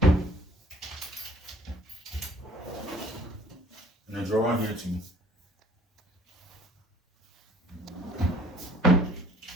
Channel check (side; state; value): both; normal; correlation 0.54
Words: And a drawer here too.